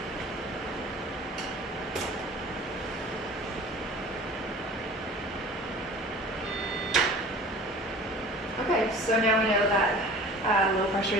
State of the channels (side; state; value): both; normal; correlation 0.44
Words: Okay, so now we know that low